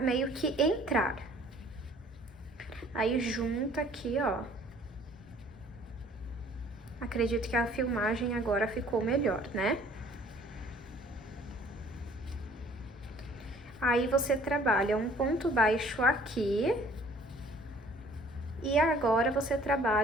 que entrar. Aí, junta aqui, ó. Acredito que a filmagem agora ficou melhor, né? Aí, você trabalha um ponto baixo aqui. E agora, você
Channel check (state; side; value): normal; both; correlation 0.55